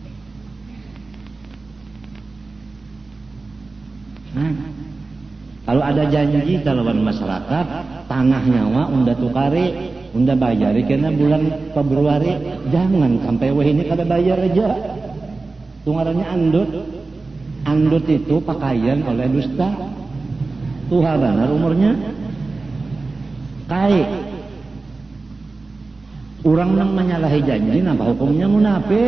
Kalau ada janji kalawan masyarakat, tanah nyawa unda tukari, unda bayari kena bulan Februari, jangan sampai wah ini kada bayar aja. Tungarannya andut. Andut itu pakaian oleh dusta. Tuha benar umurnya. Kai. Orang nang menyalahi janji, napa hukumnya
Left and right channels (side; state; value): left; quieter; 3.6 dB